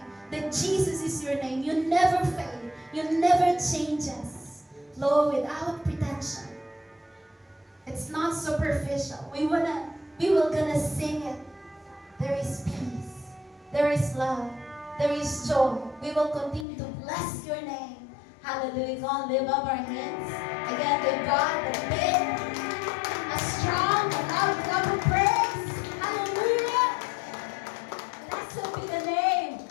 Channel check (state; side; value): drops out; right; at 16.7 s